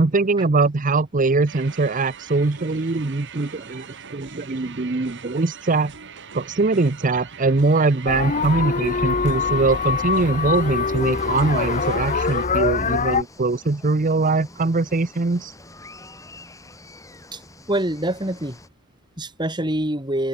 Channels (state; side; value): normal; both; correlation 0.35